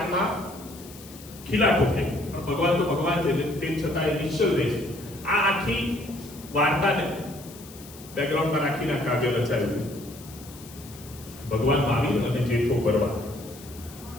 ખીલા ઠોકે. પણ ભગવાન તો ભગવાન છે તેમ છતાં એ નિશ્ચલ રહે છે. આ આખી વાર્તાને બેકગ્રાઉન્ડમાં રાખીને કાવ્ય રચાયું. ભગવાન મહાવીર અને જેઠો ભરવાડ.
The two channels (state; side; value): noise; left; hiss, 18 dB below the sound